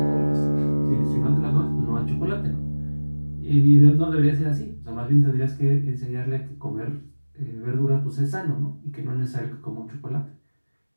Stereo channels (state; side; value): inverted; both; correlation -1.00